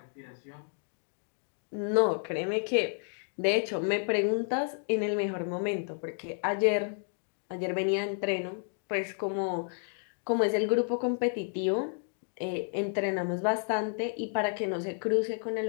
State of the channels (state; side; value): silent; right; 55 dB below the other